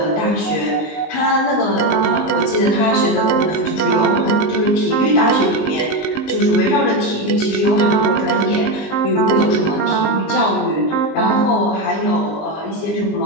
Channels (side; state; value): right; late; 19 ms